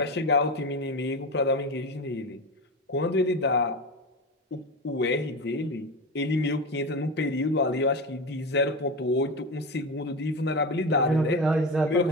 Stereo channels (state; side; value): normal; both; correlation 0.22